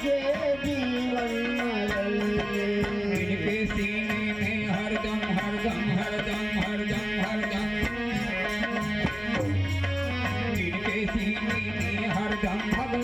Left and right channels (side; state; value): left; noise; hum, 17 dB below the sound